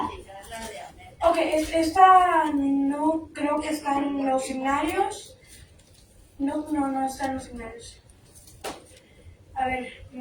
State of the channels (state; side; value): identical; both; correlation 1.00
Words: Ok, esta no creo que está en los seminarios. No está en los seminarios. A ver,